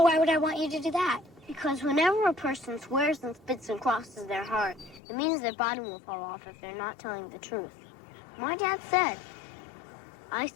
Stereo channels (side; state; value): right; drops out; at 5.0 s